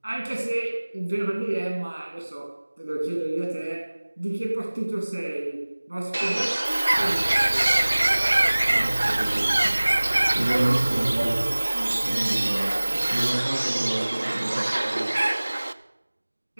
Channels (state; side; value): inverted; both; correlation -1.00